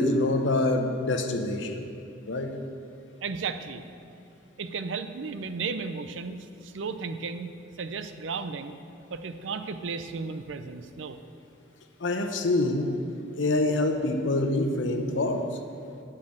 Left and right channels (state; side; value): normal; both; correlation 0.27